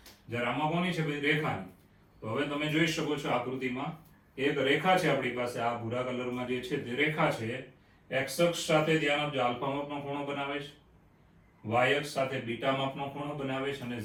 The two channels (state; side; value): identical; both; correlation 1.00